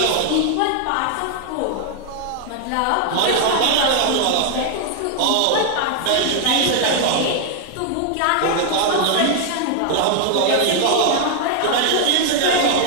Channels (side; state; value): both; different; correlation 0.00